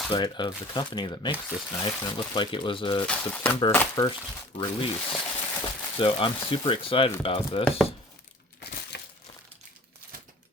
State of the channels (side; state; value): both; normal; correlation 0.45